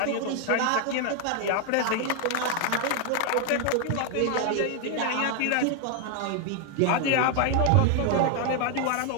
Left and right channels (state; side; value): different; both; correlation 0.00